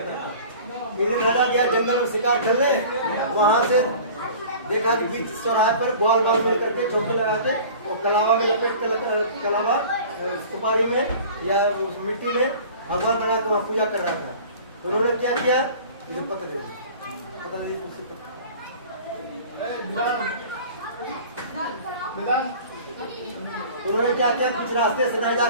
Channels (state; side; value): inverted; both; correlation -0.43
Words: था। एक दिन राजा गया जंगल में शिकार खेलने, वहां से देखा कि बीच चौराहे पर बाल मिल करके चौकी लगा के वो कलावा में लपेट कर, कलावा सुपारी में या उस मिट्टी में भगवान बना के वहाँ पूजा कर रहा था। तो उन्होंने क्या किया? मुझे पता नहीं उन्होंने क्या किया? बीच रास्ते से नहीं जा